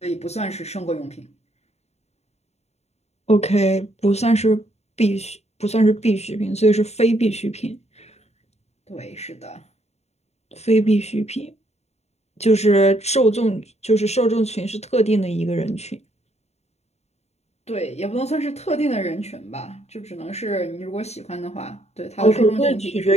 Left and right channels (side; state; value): right; late; 0.31 ms